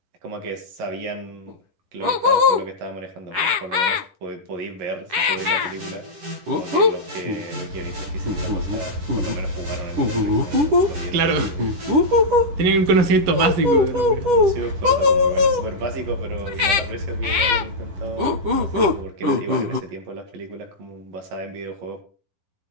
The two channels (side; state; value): left; late; 10 ms